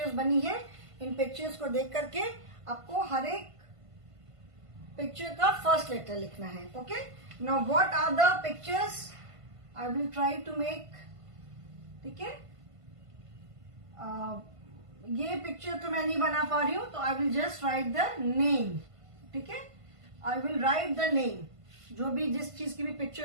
बनी है, इन pictures को देख करके आपको हर एक picture का first letter लिखना है. Okay? Now what are the pictures? I will try to make. ठीक है? ये पिक्चर तो मैं नहीं बना पा रही हूं, तो I will just right the name. ठीक है? I will write the name. जो भी जिस चीज की भी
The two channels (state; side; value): late; left; 1.5 ms